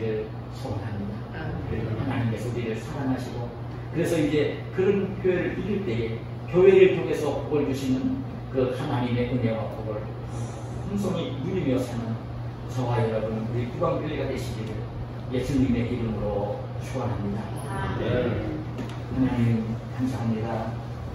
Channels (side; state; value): both; identical; correlation 1.00